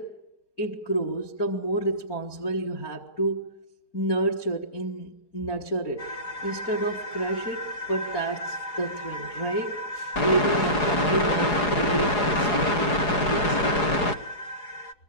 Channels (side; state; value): right; late; 4.8 ms